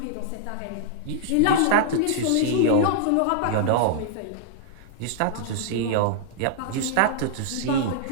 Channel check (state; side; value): different; both; correlation -0.01